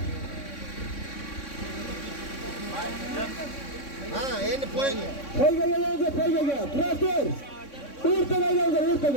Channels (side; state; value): right; late; 3.6 ms